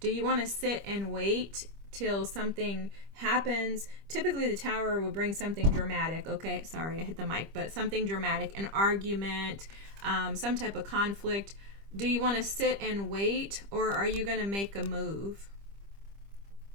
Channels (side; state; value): left; late; 25 ms